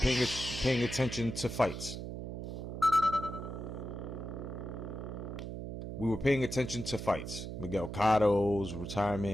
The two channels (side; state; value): right; noise; hum, 7 dB below the sound